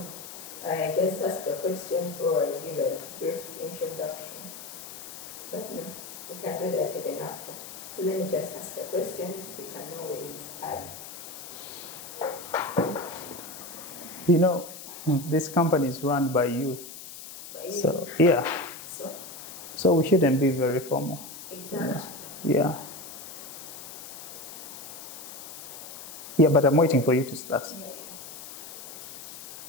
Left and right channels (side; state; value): left; noise; hiss, 12 dB below the sound